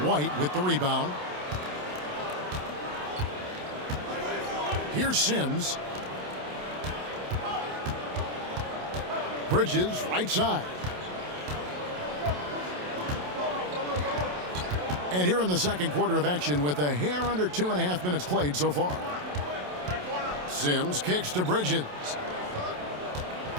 with the rebound. Here's Sims. Bridges, right side. And here in the second quarter of action with a hair under 2.5 minutes played so far. Sims kicks to Bridges.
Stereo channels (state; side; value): late; left; 27 ms